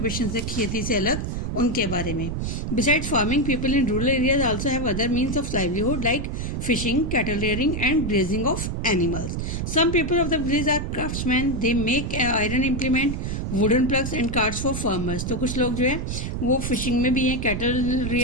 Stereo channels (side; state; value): right; noise; rumble, 3 dB below the sound